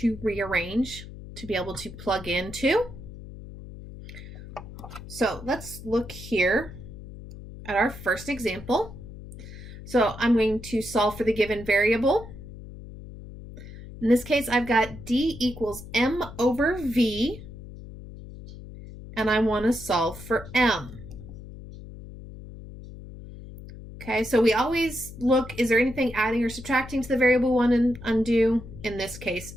rearrange to be able to plug into. So let's look here at our first example. So I'm going to solve for the given variable. In this case, I've got d equals m over v, and I want to solve for m. Okay, so we always look, is there anything adding or subtracting to the variable one and undo? In this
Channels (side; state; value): left; noise; hum, 14 dB below the sound